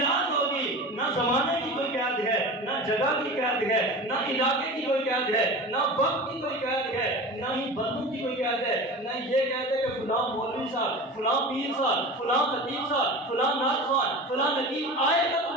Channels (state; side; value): normal; both; correlation 0.33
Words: ہوگی۔ نہ زمانے کی کوئی قید ہے، نہ جگہ کی قید ہے، نہ علاقے کی کوئی قید ہے، نہ وقت کی کوئی قید ہے، نہ ہی بندوں کی کوئی قید ہے، نہ یہ کہتے کہ فلاں مولوی صاحب، فلاں پیر صاحب، فلاں خطیب صاحب، فلاں نعت خوان، فلاں نقیب آئے گا تو